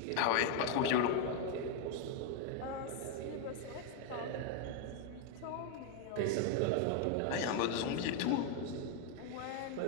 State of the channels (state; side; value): different; both; correlation 0.01